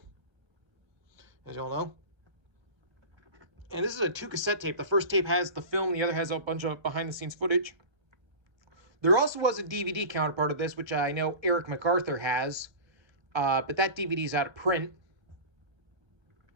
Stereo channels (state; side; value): late; left; 1.3 ms